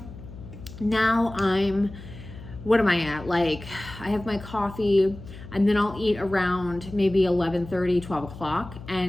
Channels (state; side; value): noise; left; hum, 15 dB below the sound